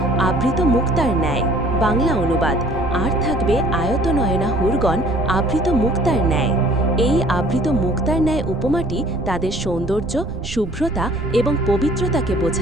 আবৃত মুক্তার ন্যায়। বাংলা অনুবাদ: আর থাকবে আয়ত নয়না হুরগণ, আবৃত মুক্তার ন্যায়। এই আবৃত মুক্তার ন্যায় উপমাটি তাদের সৌন্দর্য, শুভ্রতা এবং পবিত্রতাকে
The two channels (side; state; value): right; noise; rumble, 9 dB below the sound